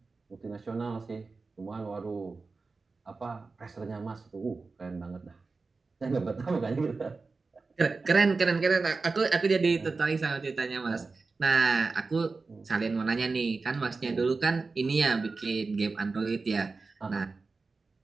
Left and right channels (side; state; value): left; quieter; 4.1 dB